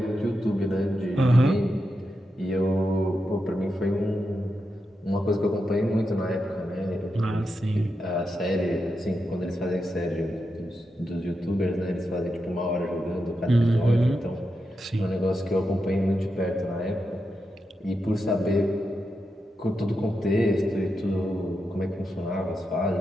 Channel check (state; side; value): normal; both; correlation 0.87